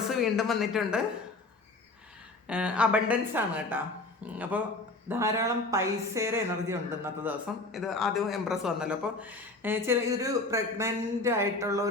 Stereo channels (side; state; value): right; quieter; 3.2 dB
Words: വീണ്ടും വന്നിട്ടുണ്ട്. അബണ്ടൻസ് ആണ് കേട്ടോ. അപ്പോൾ ധാരാളം പൈസയുടെ എനർജി ഉണ്ട് ഇന്നത്തെ ദിവസം. ഇത് ആദ്യം എംപ്രസ് വന്നല്ലോ. അപ്പോൾ ഇതൊരു പ്രഗ്നൻ്റ് ആയിട്ടുള്ള